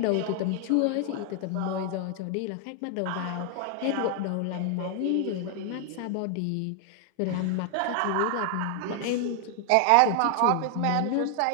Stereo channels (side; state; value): both; different; correlation 0.00